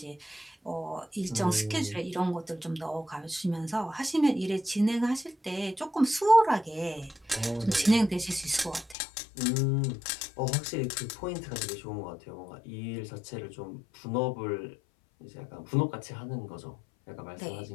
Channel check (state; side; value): drops out; right; at 9.0 s